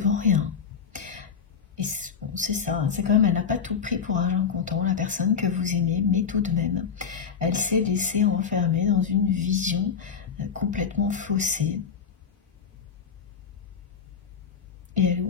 rien. Et bon, c'est ça, c'est quand même, elle n'a pas tout pris pour argent comptant, la personne que vous aimez, mais tout de même, elle s'est laissée enfermer dans une vision complètement faussée. Et elle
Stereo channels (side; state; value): right; quieter; 6.7 dB